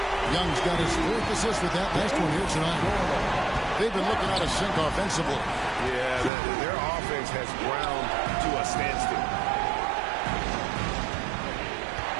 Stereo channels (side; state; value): left; drops out; at 6.3 s